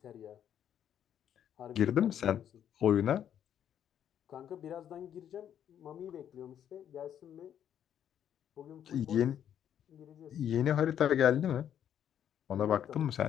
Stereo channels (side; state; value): right; quieter; 9.7 dB